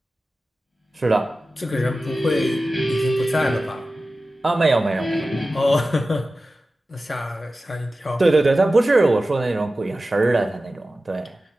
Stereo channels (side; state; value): both; normal; correlation 0.95